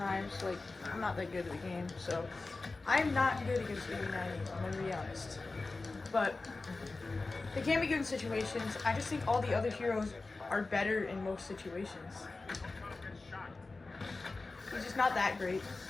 Like, I'm not that good at the game, so I'm not good against BB90, I'm gonna be honest. But they can be good in situations. I just think all the other heroes are better in most situations. He's just not that great.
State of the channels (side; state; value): right; quieter; 3.6 dB